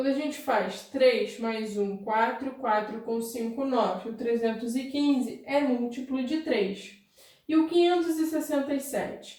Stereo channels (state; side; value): identical; both; correlation 1.00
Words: a gente faz 3 mais 1, 4, 4 com 5, 9, o 315 é múltiplo de 3. E o